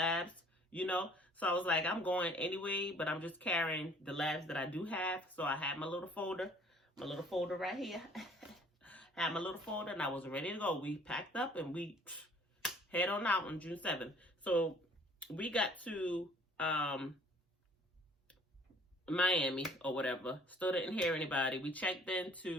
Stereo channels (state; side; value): normal; both; correlation 0.55